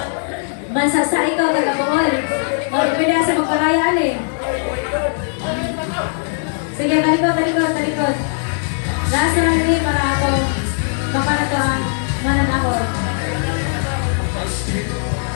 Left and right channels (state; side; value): silent; right; digital silence